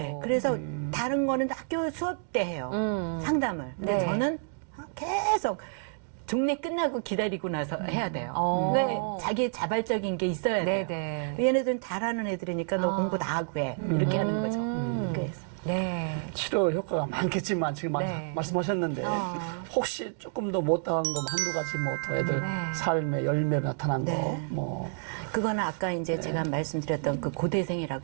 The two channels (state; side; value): silent; left; digital silence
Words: 그래서 다른 거는 학교 수업 때 해요. 상담을. 근데 네. 저는 계속 종례 끝나고 기다리고 나서 해야 돼요. 왜 자기 자발적인 게 있어야 돼요. 네네. 얘네들은 잘하는 애들이니까 너 공부 다 하고 해. 이렇게 하는 거죠. 그래서. 네. 치료 효과가 많겠지만 지금 네. 말씀하셨는데 혹시 조금 더 못당한 거 한두 가지 뭐 더 애들 네. 삶의 열매로 나타난 네. 거 뭐. 그거는 아까 이제 제가 말씀드렸던 그